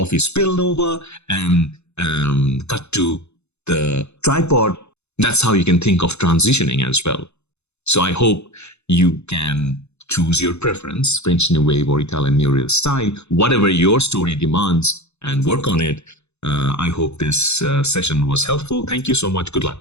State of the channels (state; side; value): late; right; 0.81 ms